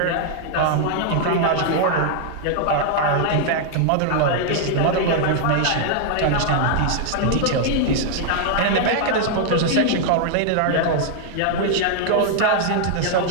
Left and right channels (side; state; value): both; different; correlation 0.00